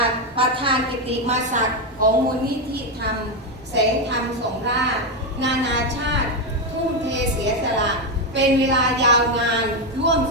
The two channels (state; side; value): normal; both; correlation 0.07